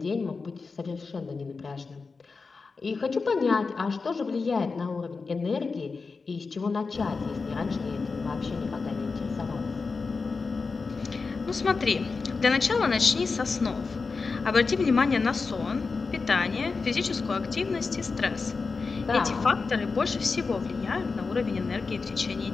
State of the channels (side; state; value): right; quieter; 4.5 dB